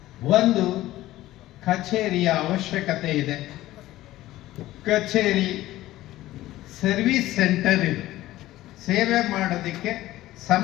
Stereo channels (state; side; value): quieter; right; 15.8 dB